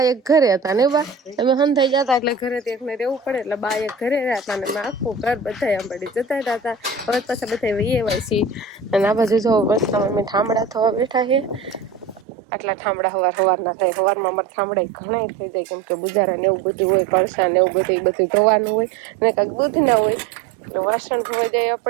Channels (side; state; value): left; drops out; at 12.2 s